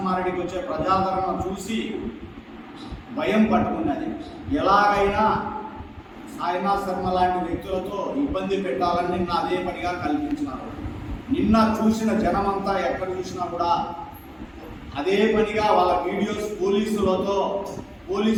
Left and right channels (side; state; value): both; identical; correlation 1.00